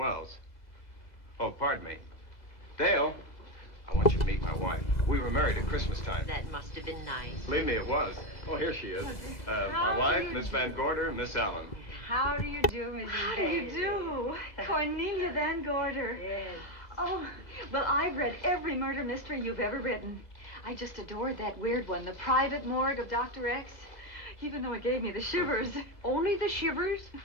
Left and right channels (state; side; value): late; right; 2.0 ms